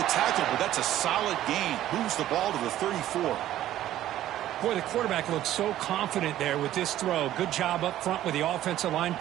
tackle, but that's a solid gain. Moves the ball to the 34. Boy, the quarterback looks so confident there with this throw. Good job up front with the offensive line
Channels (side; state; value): left; quieter; 13.1 dB